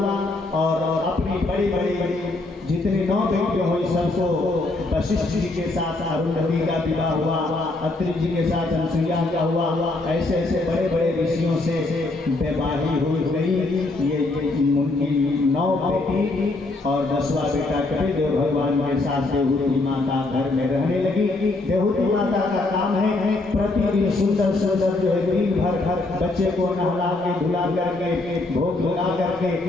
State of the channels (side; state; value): right; quieter; 3.1 dB